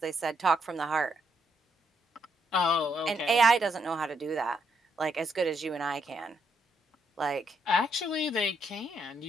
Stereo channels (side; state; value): both; normal; correlation 0.76